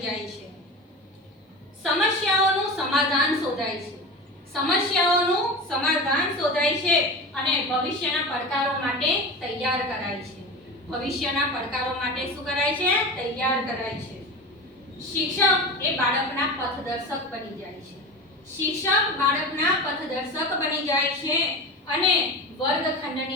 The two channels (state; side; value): normal; both; correlation 0.28